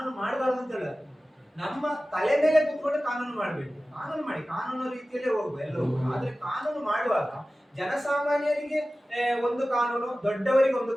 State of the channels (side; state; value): both; normal; correlation 0.96